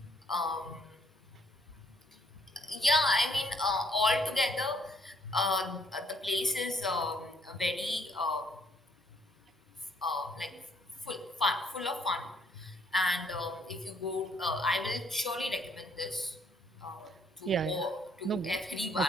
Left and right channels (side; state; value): both; normal; correlation 0.67